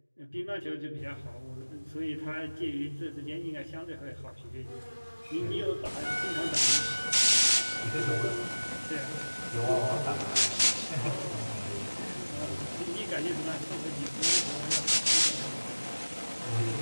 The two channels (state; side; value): inverted; both; correlation -1.00